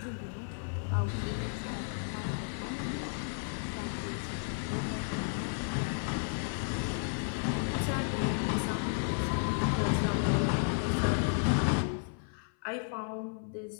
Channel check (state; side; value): silent; right; 56 dB below the other